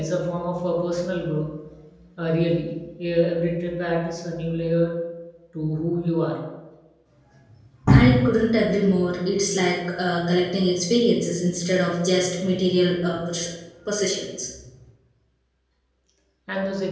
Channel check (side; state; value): both; identical; correlation 1.00